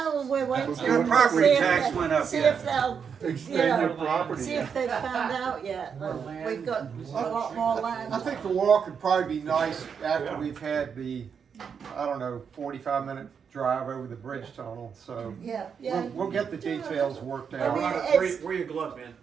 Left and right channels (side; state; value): left; quieter; 6.7 dB